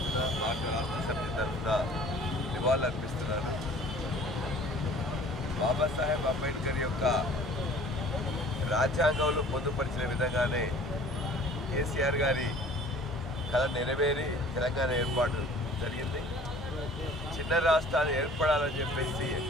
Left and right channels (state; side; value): normal; both; correlation 0.49